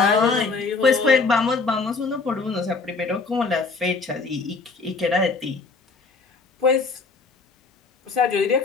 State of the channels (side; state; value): right; quieter; 4.2 dB